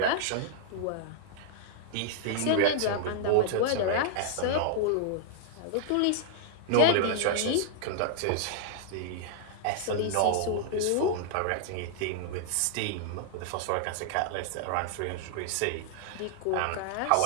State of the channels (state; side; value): different; both; correlation -0.01